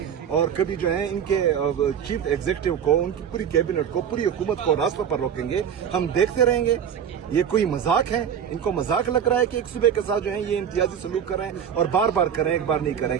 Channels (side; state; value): left; quieter; 8.3 dB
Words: اور کبھی جو ہے ان کے چیف ایگزیکٹو کو, ان کی پوری کیبنٹ کو, پوری حکومت کو راستوں پر روکیں گے؟ ہم دیکھتے رہیں گے؟ یہ کوئی مذاق ہے؟ ان کو مذاق لگ رہا ہے کہ ایک صوبے کے ساتھ جو ہے یہ امتیازی سلوک کر رہے ہیں, اور بار بار کریں, ایک بار نہیں کریں.